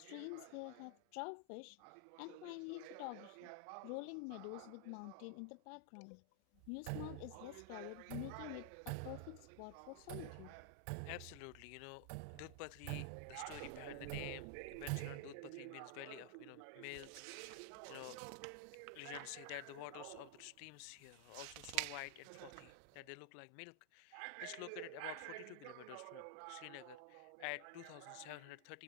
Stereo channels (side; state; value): both; different; correlation 0.00